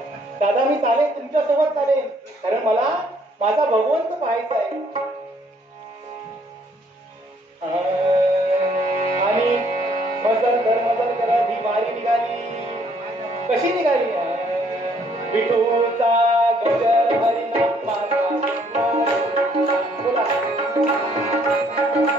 दादा मी चालेल, तुमच्या सोबत चालेल, कारण मला माझा भगवंत पाहायचा आहे. आणि मजल करत ही वारी निघाली. कशी निघाली? विठूचा गजर हरिनाम माझा. बोला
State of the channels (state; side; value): normal; both; correlation 0.65